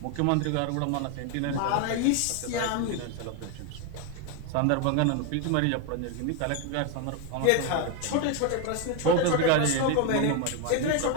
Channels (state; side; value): different; both; correlation 0.01